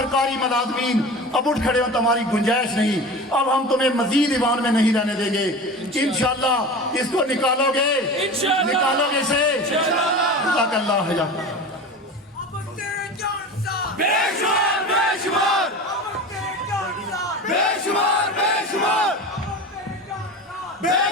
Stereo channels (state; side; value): normal; both; correlation 0.32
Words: ملازمین اب اٹھ کھڑے ہوں تمہاری گنجائش نہیں اب ہم تمہیں مزید ایوان میں نہیں رہنے دیں گے انشاءاللہ اس کو نکالو گے نکالو گے اسے جزاک اللہ خیر بے شمار بے شمار بے شمار بے شمار بے